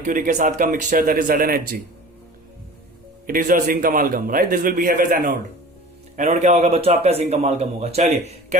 के साथ का mixture, that is ZnHg, it is your zinc amalgam, right, this will behave as anode. Anode क्या होगा बच्चों आपका जिंक अमालगम होगा। चलिए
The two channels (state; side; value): normal; both; correlation 0.40